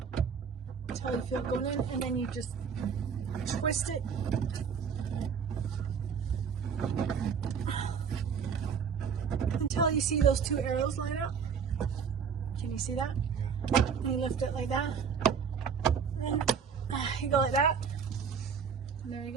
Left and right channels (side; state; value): left; quieter; 6.6 dB